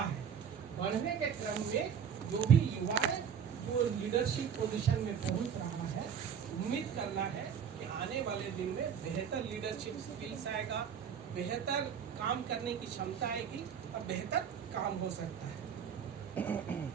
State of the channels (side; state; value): left; quieter; 7.7 dB